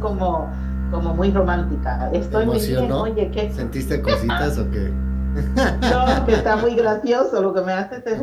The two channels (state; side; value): identical; both; correlation 1.00